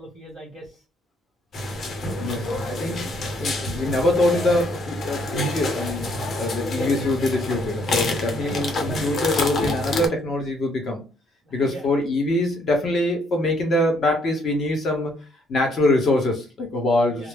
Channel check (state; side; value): normal; both; correlation 0.68